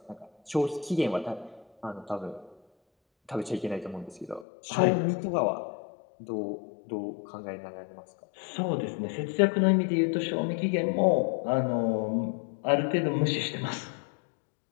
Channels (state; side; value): drops out; right; at 4.5 s